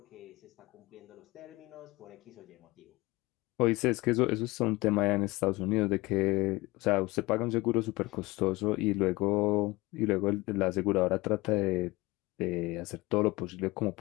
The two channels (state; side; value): quieter; right; 21.6 dB